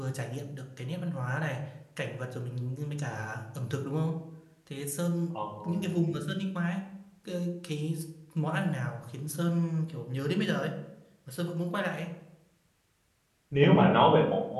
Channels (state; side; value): identical; both; correlation 1.00